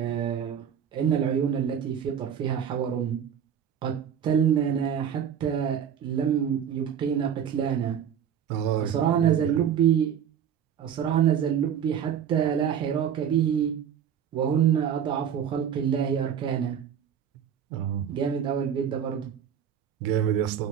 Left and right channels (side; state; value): left; quieter; 8.6 dB